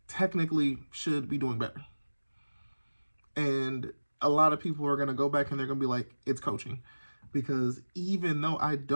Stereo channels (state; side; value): inverted; both; correlation -1.00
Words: technically should be doing better. And a lot of people are going to go back and they're going to be like, it's coaching. Because even though I